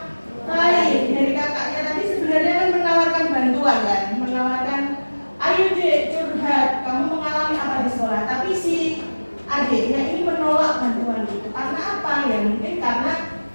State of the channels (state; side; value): inverted; both; correlation -1.00